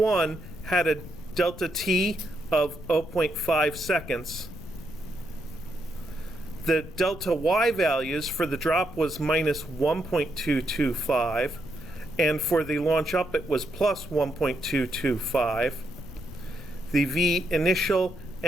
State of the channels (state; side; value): noise; left; rumble, 14 dB below the sound